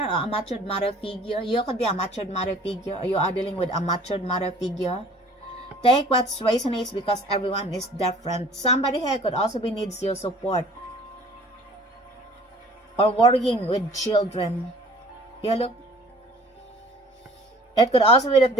or a matured mother figure. You could be a matured mother figure, or you are dealing with a matured mother figure. Take what resonates because everyone is different. Somebody here could also be needs your support, or worrying with children. Yeah, look. It could also be that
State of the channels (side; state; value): both; normal; correlation 0.50